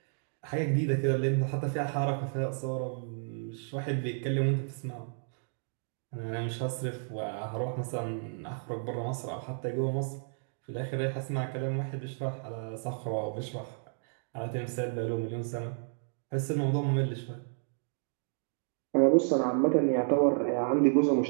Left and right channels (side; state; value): left; silent; digital silence